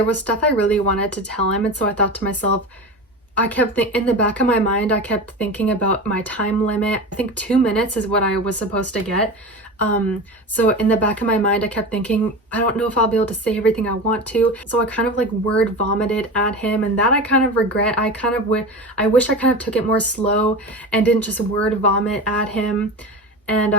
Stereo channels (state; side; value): normal; both; correlation 0.27